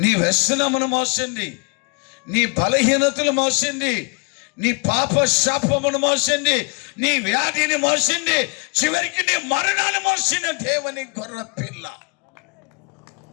నీ వ్యసనమును మోసింది, నీ బలహీనతలు మోసింది, నీ పాప శాపమును మోసింది, నీ వ్యాధిని మోసింది, చివరికి నీ మరణాన్ని మోసిన దేవుని గొర్రె పిల్ల.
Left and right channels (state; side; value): quieter; right; 33.3 dB